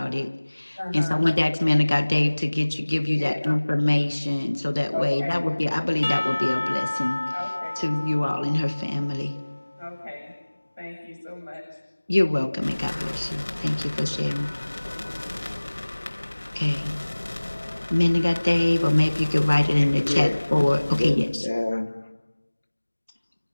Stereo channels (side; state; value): both; inverted; correlation -1.00